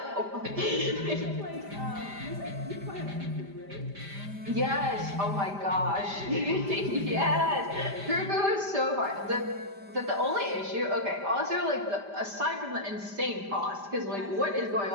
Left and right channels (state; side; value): late; left; 5.0 ms